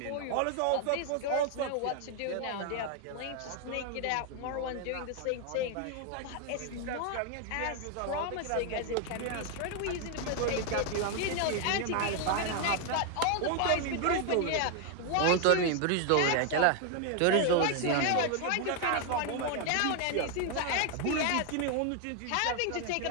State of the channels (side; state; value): both; different; correlation 0.00